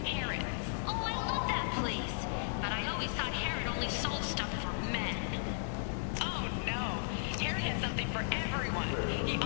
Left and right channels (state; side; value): silent; right; digital silence